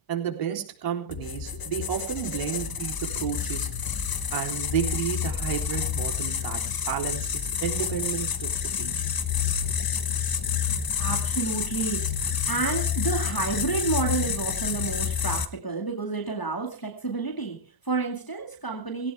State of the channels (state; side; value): late; right; 1.0 ms